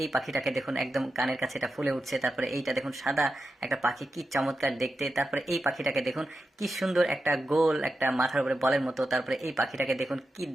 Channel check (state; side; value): normal; both; correlation 0.90